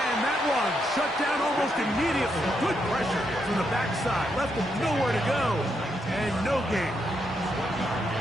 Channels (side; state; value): both; normal; correlation 0.80